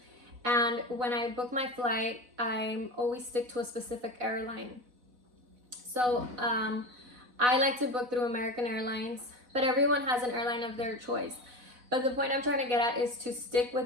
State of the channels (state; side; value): late; left; 4.0 ms